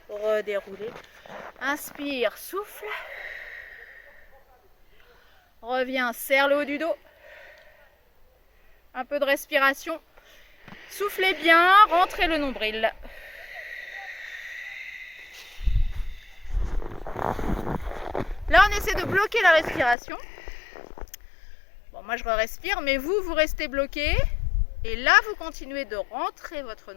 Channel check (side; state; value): right; drops out; at 20.0 s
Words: Redérouler. Inspire, souffle. Reviens, serre le haut du dos. Un peu de respiration. Soufflez bien, rentrez le nombril. Là, on essaie de bloquer la respiration. Bon, moi, je respire, mais vous restez bloqué. Et là, vous continuez de rentrer votre